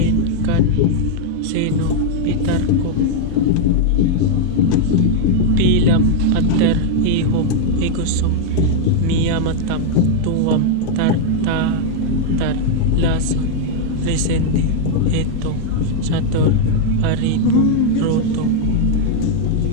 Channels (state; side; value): different; both; correlation 0.00